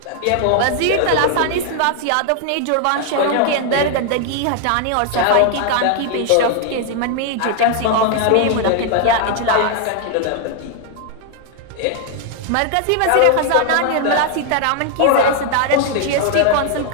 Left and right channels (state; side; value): different; both; correlation 0.00